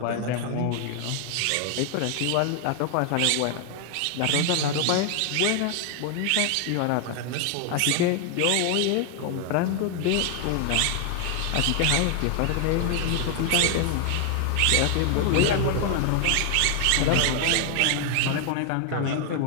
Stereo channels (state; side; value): different; both; correlation 0.00